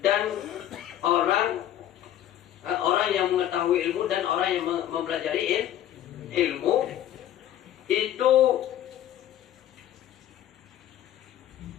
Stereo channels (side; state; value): right; quieter; 11.7 dB